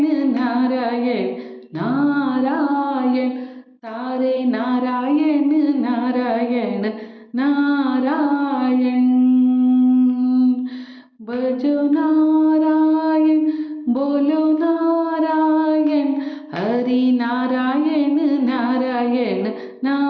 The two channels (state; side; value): identical; both; correlation 1.00